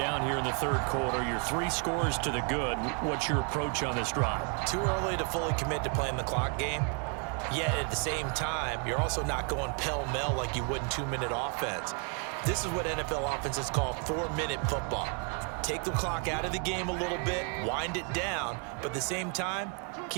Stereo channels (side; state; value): left; quieter; 39.0 dB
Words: here in the 3rd quarter. You're 3 scores to the good. What's your approach on this drive? Too early to fully commit to playing the clock game. Yet at the same time, you're also not going pell-mell like you would in 2-minute offense. This is what NFL offenses call 4-minute football. Take the clock out of the game a little bit, wind it down, but at the same time,